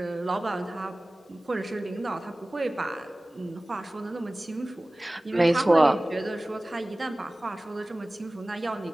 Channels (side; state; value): both; normal; correlation 0.98